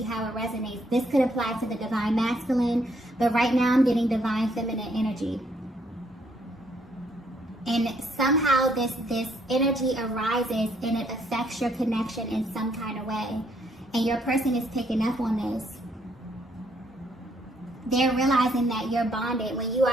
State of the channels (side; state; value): both; normal; correlation 0.69